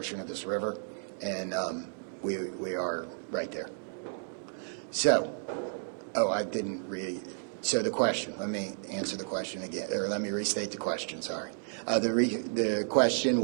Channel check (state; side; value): silent; left; digital silence